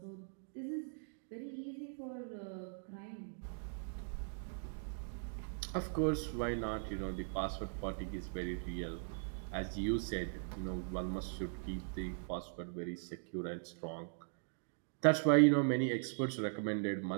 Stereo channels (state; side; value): silent; left; digital silence